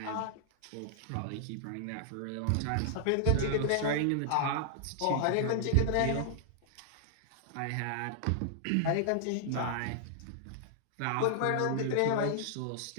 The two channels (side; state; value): both; different; correlation -0.01